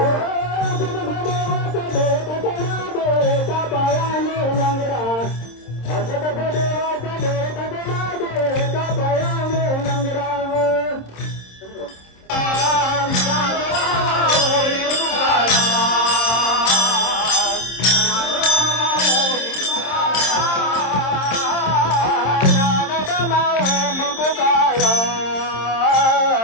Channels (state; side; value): late; right; 26 ms